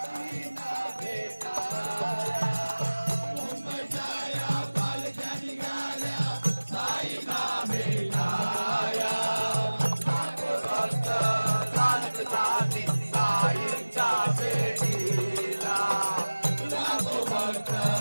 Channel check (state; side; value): inverted; both; correlation -1.00